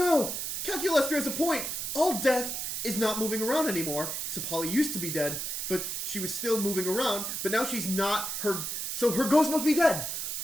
Calculester has a point! All death is not moving around anymore. So Polly used to be dead, but she was still moving around, but now she's not so her ghost must be dead.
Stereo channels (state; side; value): noise; right; hiss, 3 dB below the sound